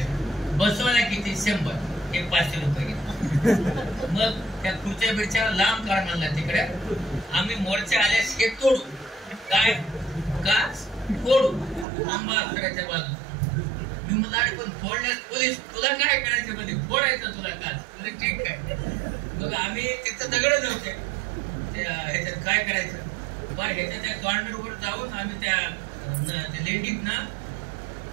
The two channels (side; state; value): left; drops out; at 11.9 s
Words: बसवायला किती? 100. हे 500 रुपये घेतले. मग त्या खुर्च्या बिरच्या लांब काढ म्हणला तिकडे. आम्ही मोर्चा आल्यास हे तोडू. काय? काच फोडू आंबाच्या बाजू. मी मला अरे पण फोडल्यास पोलीस तुला काय करायचं मध्ये फोडायचं तुला काच. तुला ठीक आहे. मग आम्ही तिथं दगड नव्हते ह्याच्यात काय करायचं बरं. ह्याच्या त्या कॉर्नरवर जाऊन आम्ही त्या लेंडीतनं